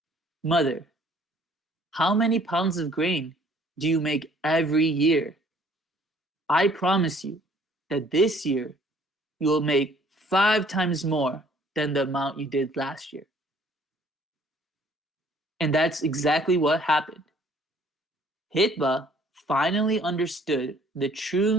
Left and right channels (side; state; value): both; normal; correlation 0.58